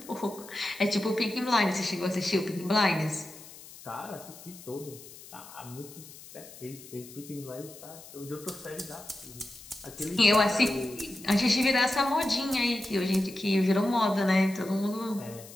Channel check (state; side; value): noise; left; hiss, 18 dB below the sound